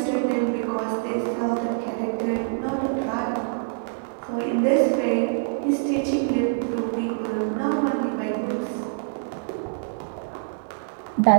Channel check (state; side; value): silent; left; digital silence